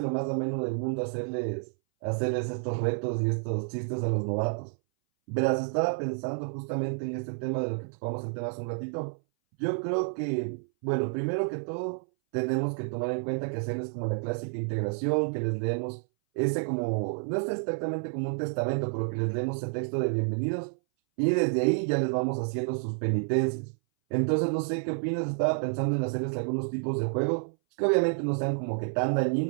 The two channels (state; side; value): silent; left; 58 dB below the other